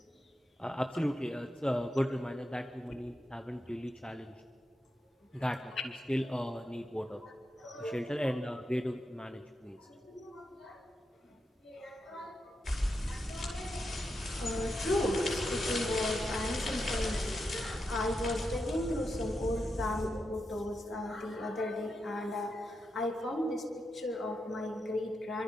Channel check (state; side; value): normal; both; correlation 0.86